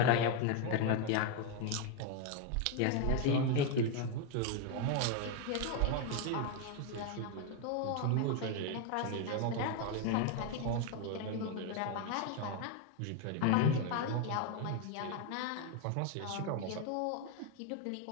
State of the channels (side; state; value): both; different; correlation 0.01